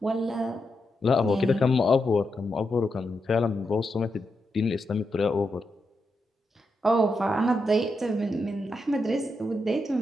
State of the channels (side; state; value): both; normal; correlation 0.85